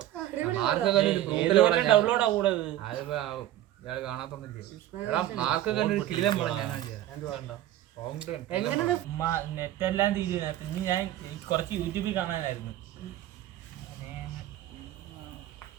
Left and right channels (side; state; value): left; quieter; 13.5 dB